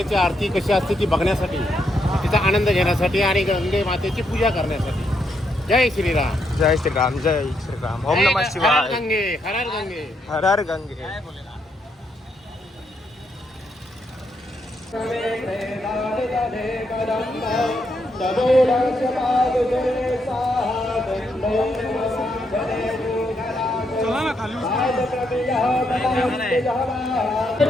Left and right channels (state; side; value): normal; both; correlation 0.78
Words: आरती कशी असते ती बघण्यासाठी, तिचा आनंद घेण्यासाठी आणि गंगे मातेची पूजा करण्यासाठी. जय श्रीराम. जय श्रीराम, जय श्रीराम. ओम नमः हर शिवाय. गंगे, हर हर गंगे. हर हर गंगे. चला ना खाली